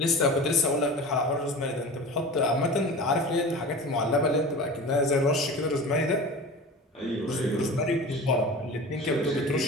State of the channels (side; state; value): both; normal; correlation 0.34